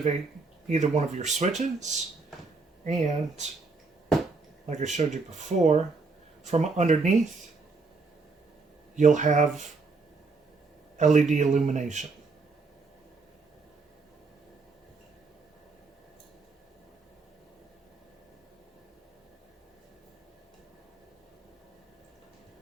either one of your switches. And, like I showed you before, from underneath, you'll have LED illumination.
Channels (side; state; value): left; quieter; 4.1 dB